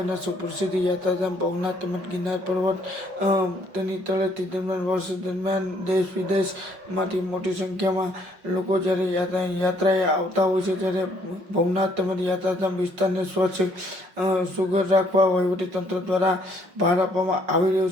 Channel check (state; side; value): late; left; 5.5 ms